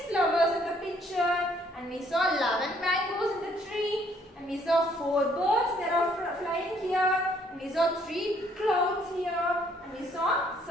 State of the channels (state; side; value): normal; both; correlation 0.65